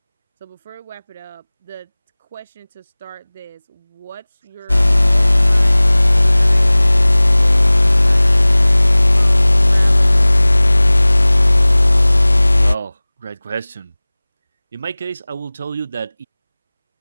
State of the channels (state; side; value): inverted; both; correlation -1.00